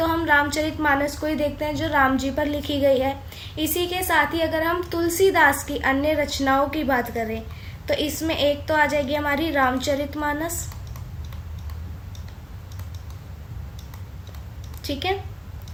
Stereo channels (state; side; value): identical; both; correlation 1.00